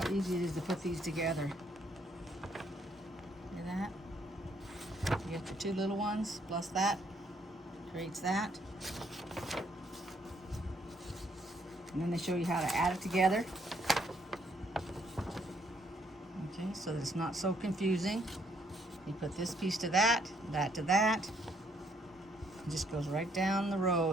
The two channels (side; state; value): both; normal; correlation 0.69